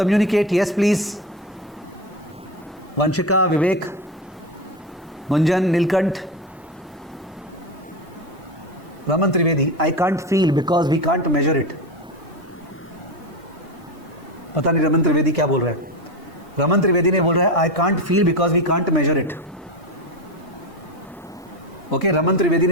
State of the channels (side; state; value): both; normal; correlation 0.19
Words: Yes please. Vanshika, Vivek, Munjan, Neelkanth, Raman Trivedi, I can't feel because we can't measure it. पता नहीं रमन त्रिवेदी क्या बोल रहा है। रमन त्रिवेदी ने बोल रहा है I can't feel because we can't measure it. Okay, Raman Trivedi